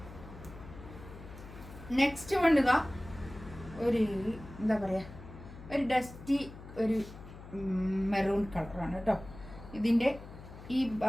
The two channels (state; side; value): noise; left; hum, 15 dB below the sound